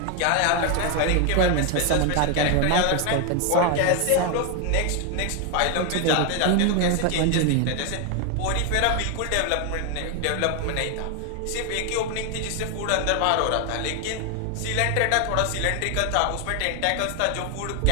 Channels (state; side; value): different; both; correlation 0.01